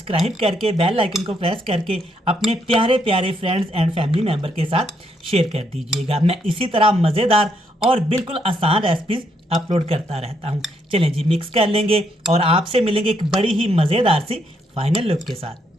करके बेल आइकन को प्रेस करके अपने प्यारे प्यारे फ्रेंड्स एंड फैमिली मेम्बर के साथ शेयर कर दीजिएगा। मैं इसी तरह मज़ेदार और बिल्कुल आसान रेसिपीज़ अपलोड करता रहता हूँ। चलें जी, मिक्स कर लेंगे और आपसे मिलेंगे एक बड़ी ही मज़ेदार सी फाइनल लुक के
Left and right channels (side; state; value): both; normal; correlation 0.74